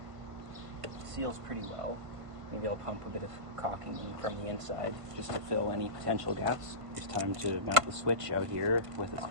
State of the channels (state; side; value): late; left; 1.5 ms